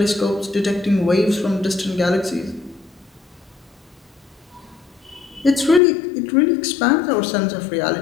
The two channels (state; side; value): drops out; right; at 5.8 s